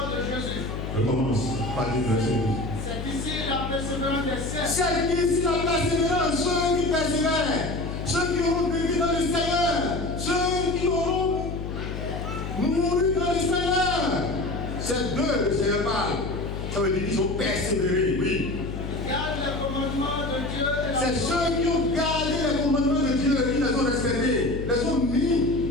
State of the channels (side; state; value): left; noise; hum, 6 dB below the sound